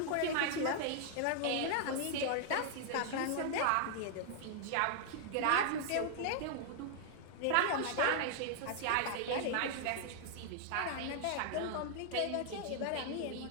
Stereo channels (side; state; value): both; different; correlation 0.00